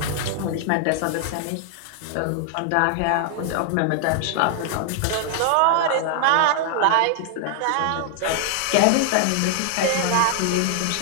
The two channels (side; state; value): both; different; correlation 0.00